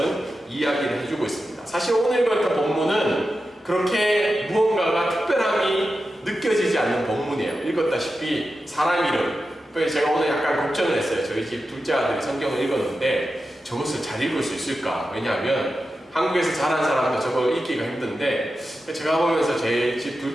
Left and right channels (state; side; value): normal; both; correlation 0.91